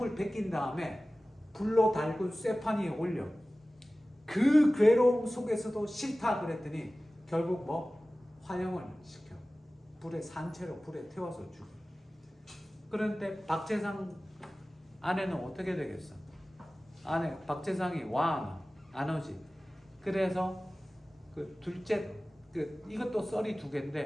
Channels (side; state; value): both; normal; correlation 0.97